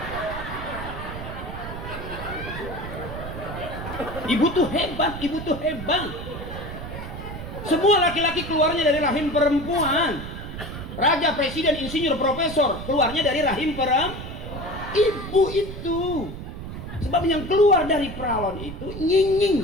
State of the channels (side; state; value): right; noise; rumble, 9 dB below the sound